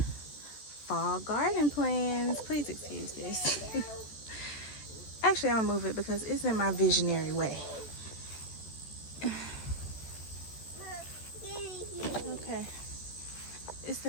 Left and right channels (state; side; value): late; right; 14 ms